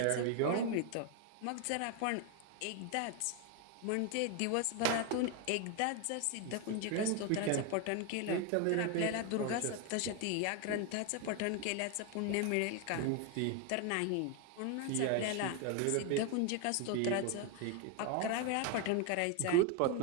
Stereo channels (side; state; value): both; different; correlation 0.01